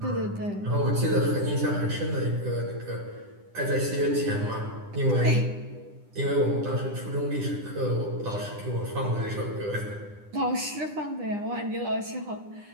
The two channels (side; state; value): left; late; 9.9 ms